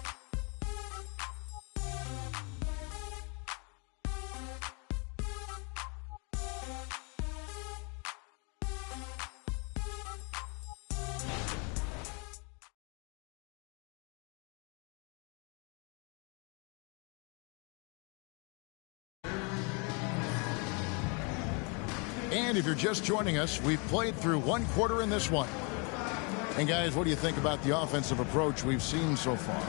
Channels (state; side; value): quieter; right; 33.4 dB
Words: And if you're just joining us, we've played through 1 quarter in this one. And guys, what do you think about the offensive approach we've seen so far